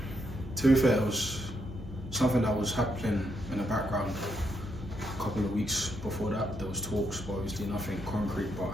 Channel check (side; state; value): both; normal; correlation 0.78